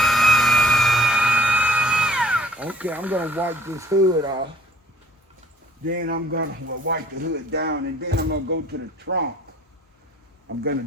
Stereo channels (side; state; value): both; normal; correlation 0.57